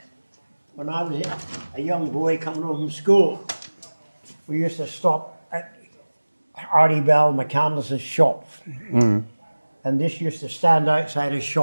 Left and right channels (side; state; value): both; inverted; correlation -1.00